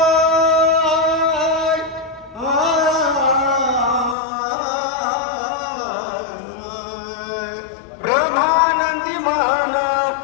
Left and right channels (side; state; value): right; drops out; at 4.2 s